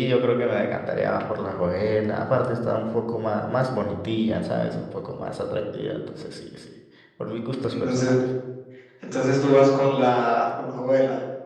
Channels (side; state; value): both; identical; correlation 1.00